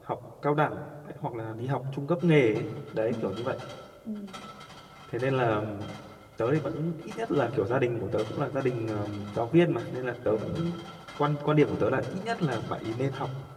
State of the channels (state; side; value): identical; both; correlation 1.00